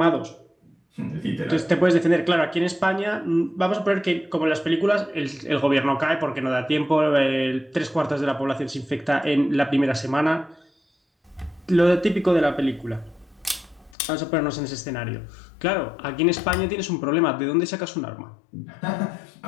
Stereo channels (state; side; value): drops out; right; at 14.0 s